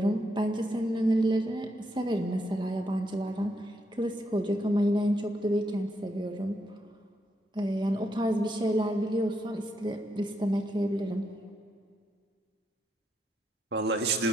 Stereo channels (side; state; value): both; normal; correlation 0.80